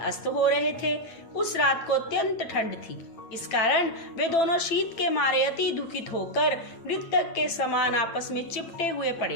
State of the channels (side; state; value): right; late; 9.0 ms